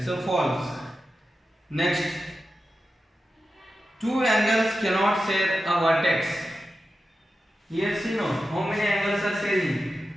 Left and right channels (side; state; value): both; normal; correlation 0.91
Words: So false. Next, two angles cannot share a vertex. Yes, you know how many angles are sharing?